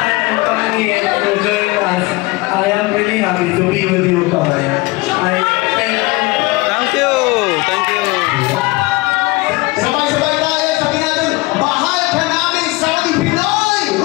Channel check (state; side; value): quieter; right; 22.6 dB